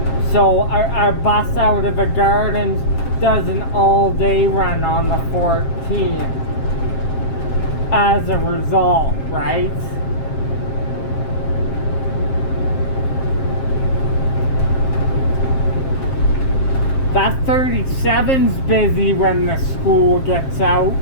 So our bus out of the Gardens does an all-day run on the 14 as a result, right? That 37's busy when the school gets out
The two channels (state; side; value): late; right; 7.6 ms